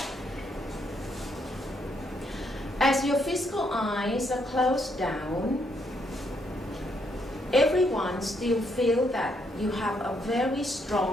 As your physical eyes are closed down, everyone still feel that you have a very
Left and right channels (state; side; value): normal; both; correlation 0.74